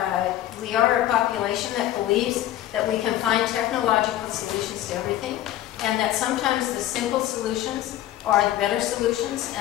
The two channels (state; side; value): quieter; right; 13.3 dB